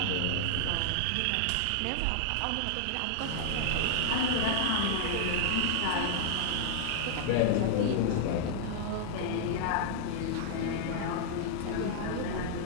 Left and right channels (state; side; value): different; both; correlation -0.01